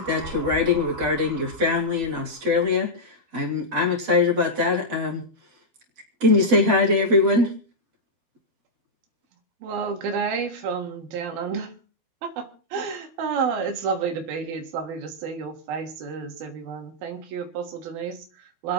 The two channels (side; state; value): left; late; 12 ms